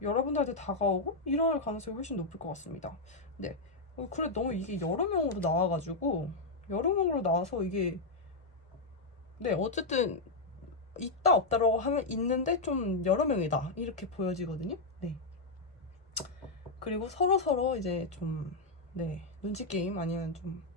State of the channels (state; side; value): quieter; right; 3.3 dB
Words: 여러분들한테 다가오고 이럴 가능성이 훨씬 높을 것 같습니다. 네. 그래 너무 이게 여러 명으로 나와가지고 여러 명으로 나와서 이게 네 어쨌든 있다 없다라고 하면 있는데 좀 여러 명이다 이렇게 보여지거든요. 네. 그리고 서로 이제 좀 네 눈치 게임 아니면 좀